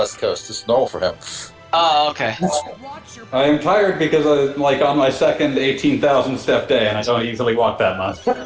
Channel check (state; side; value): identical; both; correlation 1.00